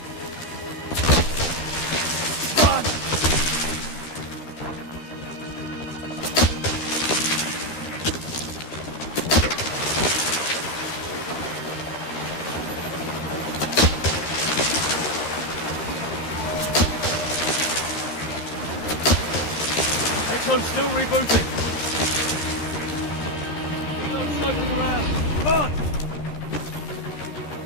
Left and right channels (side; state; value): right; late; 13 ms